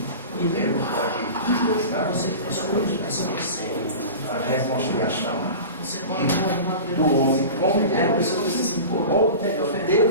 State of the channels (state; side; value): inverted; both; correlation -0.33